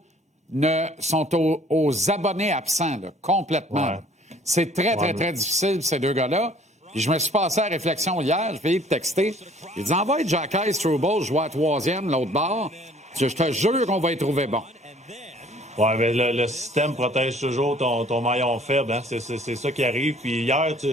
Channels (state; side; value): normal; both; correlation 0.56